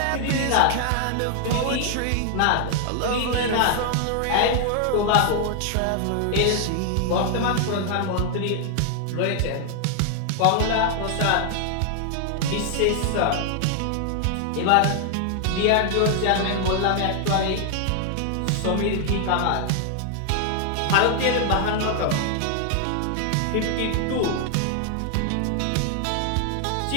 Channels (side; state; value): both; different; correlation 0.00